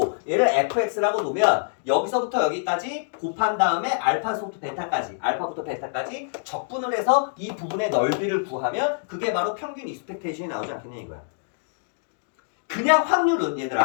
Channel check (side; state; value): right; silent; digital silence